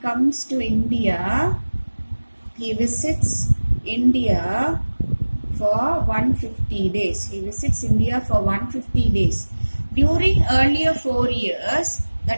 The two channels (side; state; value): both; inverted; correlation -1.00